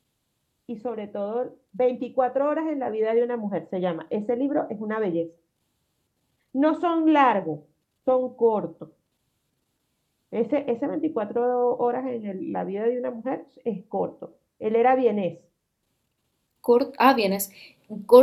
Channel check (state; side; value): identical; both; correlation 1.00